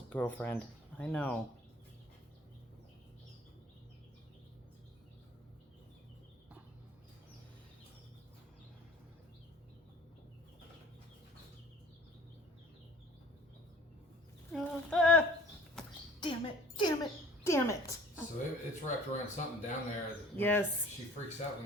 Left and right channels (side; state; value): both; normal; correlation 0.50